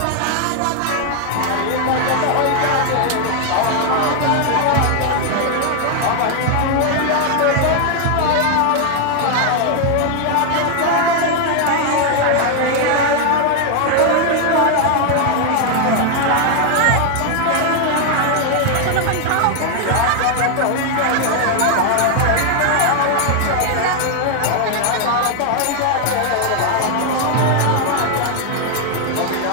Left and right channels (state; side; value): different; both; correlation 0.00